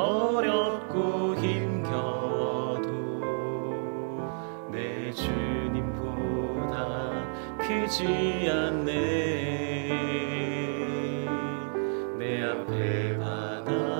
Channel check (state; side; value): silent; left; digital silence